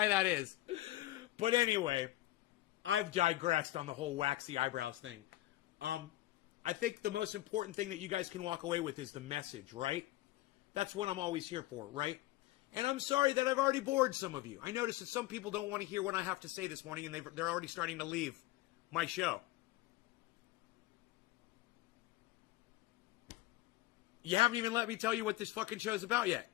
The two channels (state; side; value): quieter; right; 17.0 dB